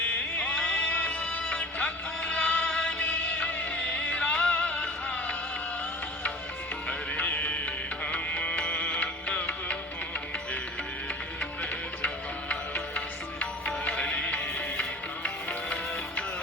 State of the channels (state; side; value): normal; both; correlation 0.41